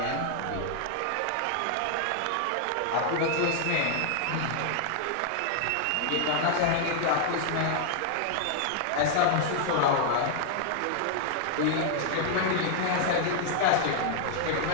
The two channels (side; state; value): both; different; correlation 0.00